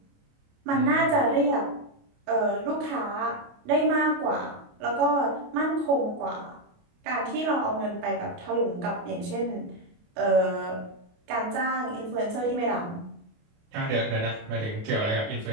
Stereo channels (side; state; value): left; late; 28 ms